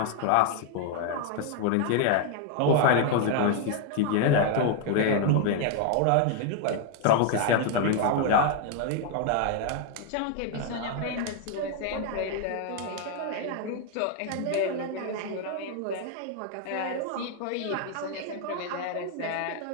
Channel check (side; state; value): both; different; correlation 0.00